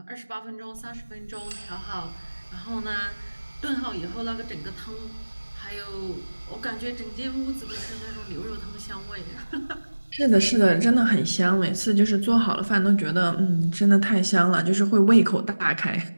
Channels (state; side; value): inverted; both; correlation -1.00